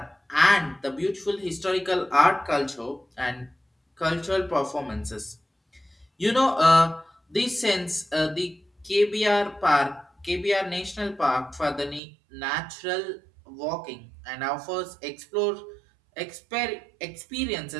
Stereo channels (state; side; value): drops out; left; at 12.0 s